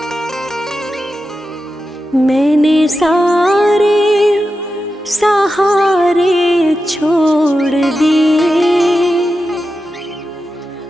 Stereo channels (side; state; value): both; normal; correlation 0.90